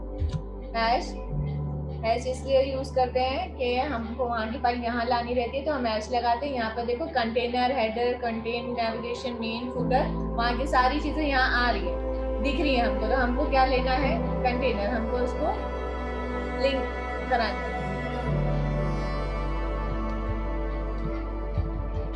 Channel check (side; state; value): both; identical; correlation 1.00